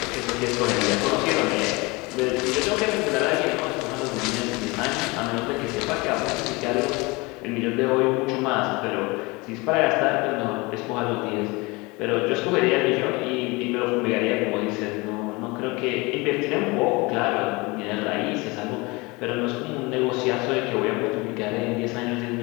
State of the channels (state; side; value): quieter; right; 25.1 dB